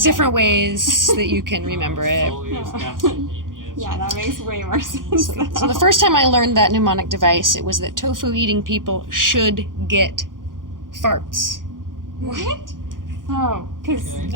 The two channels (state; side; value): late; left; 0.90 ms